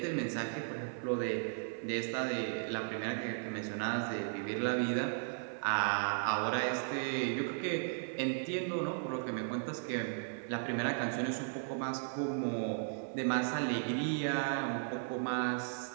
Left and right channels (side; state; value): left; silent; 54 dB below the other